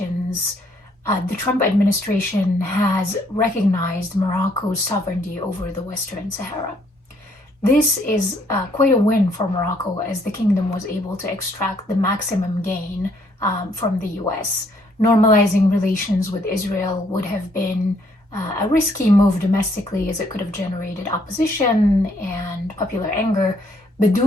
the Trump administration has recognized Morocco's sovereignty over the Western Sahara. This is quite a win for Morocco, as the kingdom was able to extract the maximum gain from the US. Normalizing relations with Israel would have been a risky move domestically, as it could have generated opposition and popular anger, but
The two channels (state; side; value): normal; both; correlation 0.68